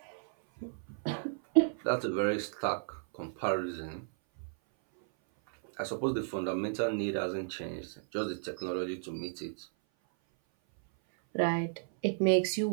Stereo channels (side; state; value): left; silent; 55 dB below the other